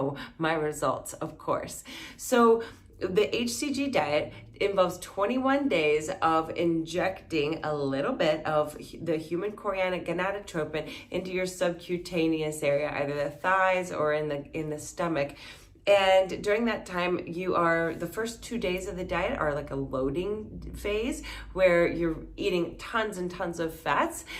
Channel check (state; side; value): identical; both; correlation 1.00